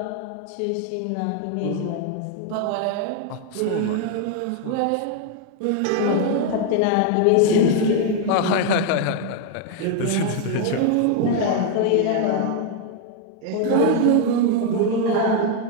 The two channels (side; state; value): both; different; correlation 0.00